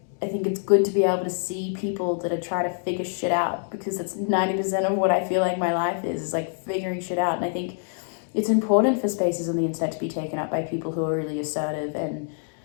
I think it's good to be able to see people that are trying to figure shit out, because that's 90% of what I feel like my life is like figuring shit out. And I think it's important for spaces on the internet to be taken up by people who are really assertive and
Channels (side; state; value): right; silent; 61 dB below the other